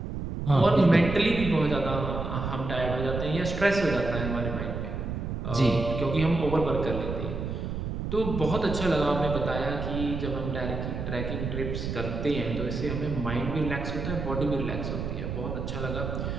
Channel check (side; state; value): right; noise; rumble, 4 dB below the sound